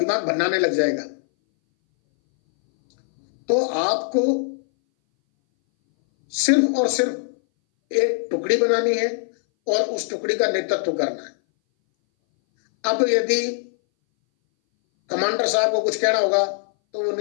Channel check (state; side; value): silent; right; 60 dB below the other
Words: भन्नाने लग जाएगा। तो आपको सिर्फ और सिर्फ एक टुकड़ी बनानी है और उस टुकड़ी का नेतृत्व करना है। अब यदि कमांडर साहब को कुछ कहना होगा तो वो